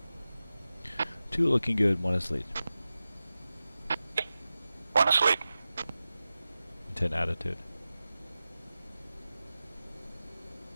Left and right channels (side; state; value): both; inverted; correlation -0.94